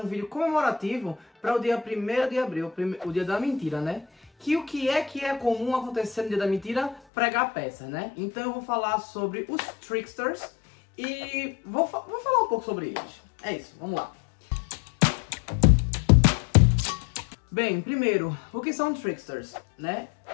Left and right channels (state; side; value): drops out; right; at 7.0 s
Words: vídeo comemorativo para o dia 1º de abril, o dia da mentira, né? O que é comum acontecer no dia da mentira? Pregar peças, né? Então eu vou falar sobre os tricksters e vou falar um pouco sobre eles. É isso, vamos lá. Bem, primeiro, o que são tricksters, né?